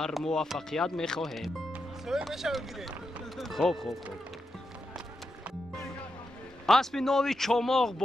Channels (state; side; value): normal; both; correlation 0.86